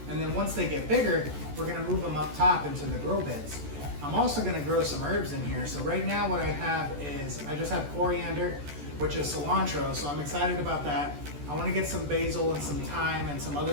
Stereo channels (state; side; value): late; left; 14 ms